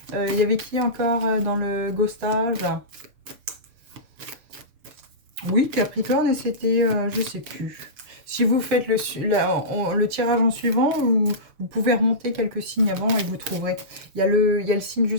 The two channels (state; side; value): late; left; 6.8 ms